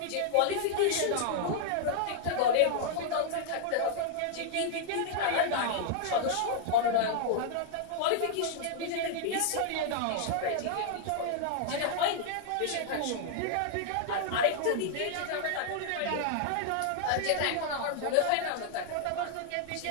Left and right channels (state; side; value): different; both; correlation -0.01